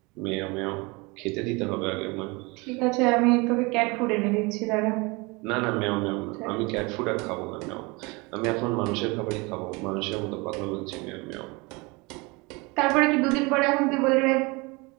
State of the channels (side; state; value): left; quieter; 26.4 dB